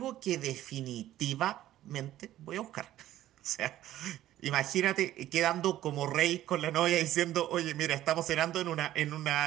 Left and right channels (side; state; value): left; quieter; 13.6 dB